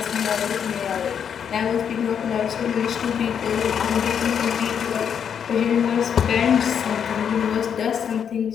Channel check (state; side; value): quieter; right; 7.9 dB